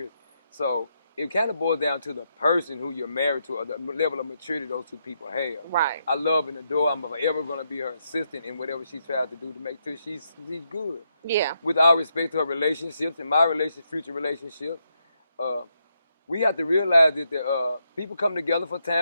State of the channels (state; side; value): inverted; both; correlation -0.80